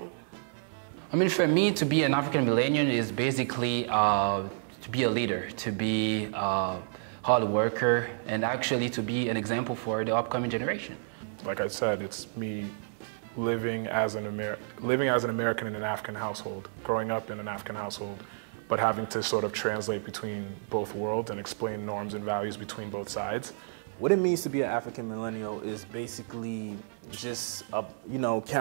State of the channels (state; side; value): silent; left; 58 dB below the other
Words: I mean, for me, to be an African millennial is basically to be a leader, to be a hard worker, and actually to be an example for the upcoming generation. Like I said, it's me living as an American in an African household, growing up in an African household, but having to sort of translate between both worlds and explain norms and values between both sides. What it means to be an African millennial is basically just,